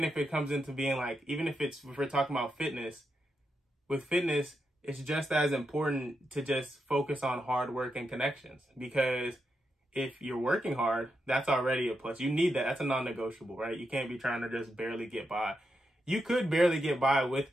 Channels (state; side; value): normal; both; correlation 0.84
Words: if it comes into being like, even if we're talking about fitness, with fitness, it's just as important to just focus on hard work and connections, because if you're working hard, that's already a plus. You need that. That's a non-negotiable, right? You can't be trying to just barely get by. You could barely get by with